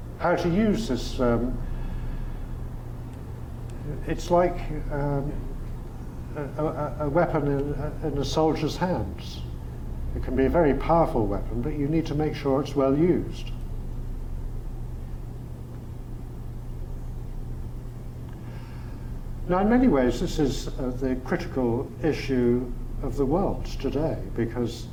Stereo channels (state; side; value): identical; both; correlation 1.00